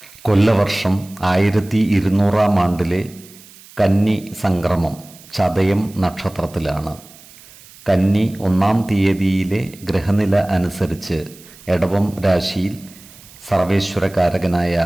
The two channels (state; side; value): noise; right; hiss, 22 dB below the sound